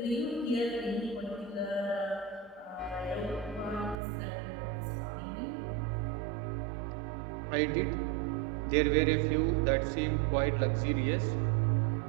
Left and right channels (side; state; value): left; drops out; at 4.0 s